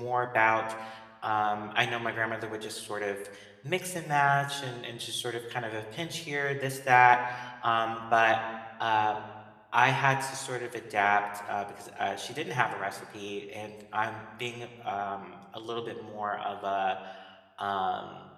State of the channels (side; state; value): both; identical; correlation 1.00